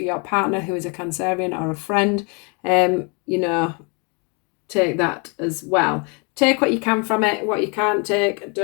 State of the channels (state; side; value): quieter; right; 33.8 dB